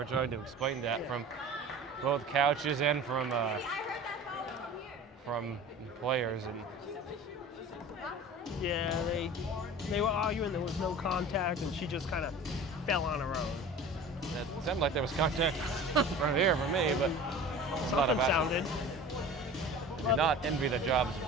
trying to explain that from both couches and from players. And yeah, they were arguing there was no contact, and she just kind of fell on her own. It sounded like there was contact from here for me, but Something sounded. Do not envy the jobs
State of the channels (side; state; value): both; normal; correlation 0.39